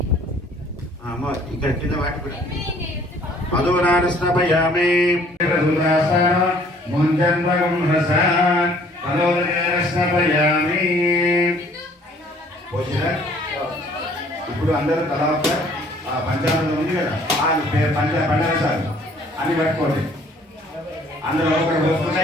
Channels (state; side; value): normal; both; correlation 0.58